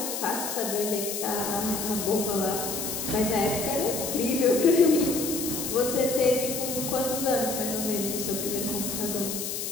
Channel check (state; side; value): noise; left; hiss, 4 dB below the sound